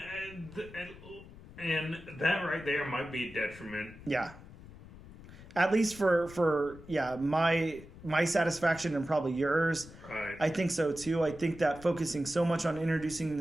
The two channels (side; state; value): left; noise; rumble, 18 dB below the sound